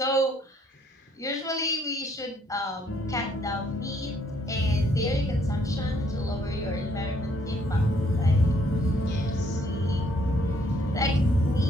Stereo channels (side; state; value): both; normal; correlation 0.67